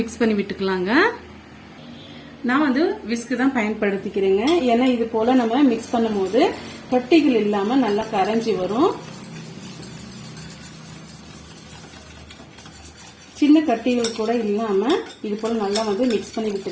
மிக்ஸ் பண்ணி விட்டுக்கலாங்க. நான் விஸ்க் தான் பயன்படுத்திக்கிறேங்க. ஏன்னா இது போல நம்ம மிக்ஸ் பண்ணும் போது கட்டிகள் இல்லாம நல்லா கரைஞ்சி வரும். சின்ன கட்டிகள் கூட இல்லாம இது போல நல்லா மிக்ஸ் பண்ணி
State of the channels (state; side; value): identical; both; correlation 1.00